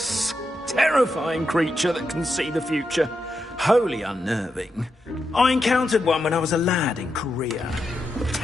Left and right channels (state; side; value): normal; both; correlation 0.86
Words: Terrifying creature that can see the future. Wholly unnerving. I encountered one when I was a lad in Korea.